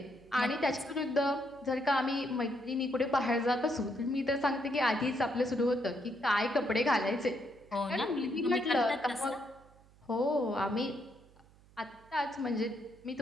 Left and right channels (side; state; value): right; noise; hum, 27 dB below the sound